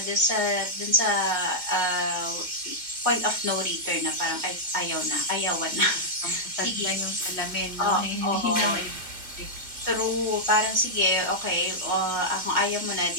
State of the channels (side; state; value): left; late; 2.1 ms